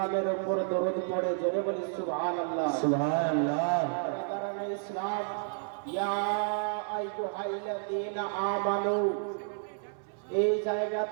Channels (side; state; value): left; silent; 57 dB below the other